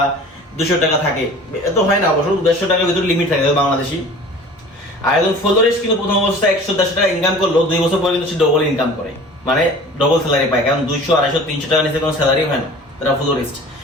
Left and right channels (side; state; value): both; normal; correlation 0.43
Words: 200 টাকা থাকে। এত হয় না অবশ্য, 150 টাকার ভিতরে লিমিট থাকে বাংলাদেশি। আর একজন ফ্লোরিস্ট কিন্তু প্রথম অবস্থায় 150 টাকা ইনকাম করলো, 2 বছর পরে কিন্তু সে ডবল ইনকাম করে, মানে ডবল স্যালারি পায়। কারণ 200, 250, 300 টাকা নিচে কোনো স্যালারি হয় না তারা ফ্লোরিস্ট।